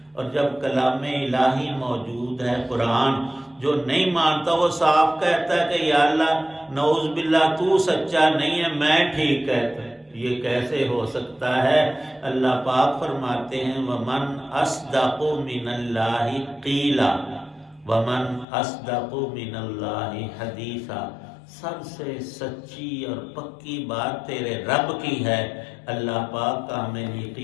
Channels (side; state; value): right; drops out; at 18.4 s